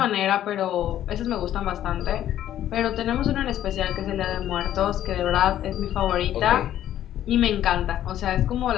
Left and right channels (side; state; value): right; quieter; 11.9 dB